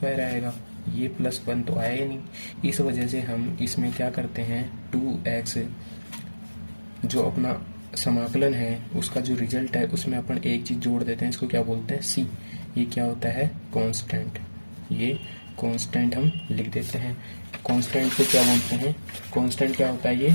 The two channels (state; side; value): inverted; both; correlation -1.00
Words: आएगा। ये प्लस 1 तो आया ही नहीं, इस वजह से हम इसमें क्या करते हैं, 2x जो अपना समाकलन है उसका जो रिजल्ट है उसमें अपन एक चीज़ जोड़ देते हैं, इसको क्या बोलते हैं, c। ये क्या होता है, कांस्टेंट। ये कांस्टेंट हम लिख देते हैं। कांस्टेंट को क्या बोलते हैं, कांस्टेंट क्या होता है, ये